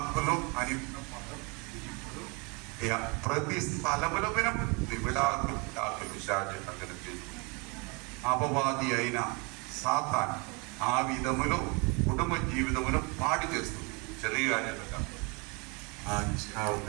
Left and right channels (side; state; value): left; quieter; 30.3 dB